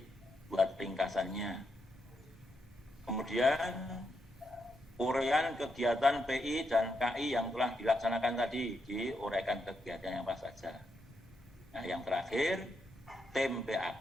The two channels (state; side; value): normal; both; correlation 0.81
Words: ringkasannya. Kemudian uraian kegiatan PI dan KI yang telah dilaksanakan tadi, diuraikan kegiatannya apa saja. Nah, yang terakhir, tim